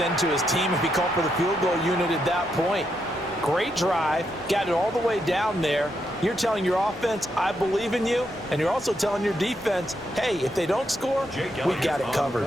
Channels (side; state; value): both; normal; correlation 0.80